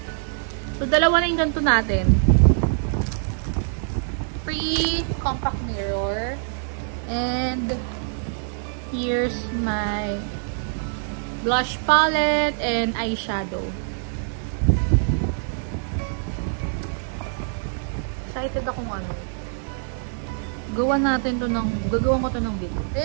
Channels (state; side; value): silent; left; 60 dB below the other